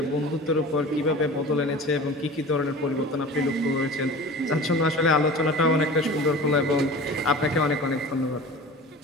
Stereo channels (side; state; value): both; normal; correlation 0.38